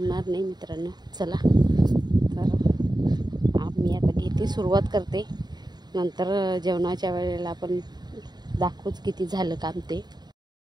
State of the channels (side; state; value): left; late; 0.20 ms